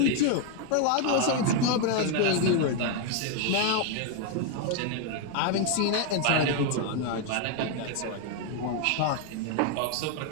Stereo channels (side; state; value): both; different; correlation 0.01